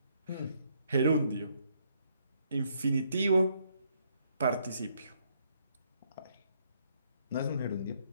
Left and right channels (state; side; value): inverted; both; correlation -0.71